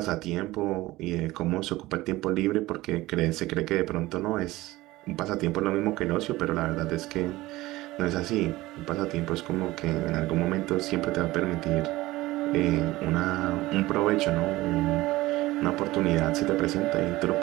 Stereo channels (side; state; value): left; quieter; 18.4 dB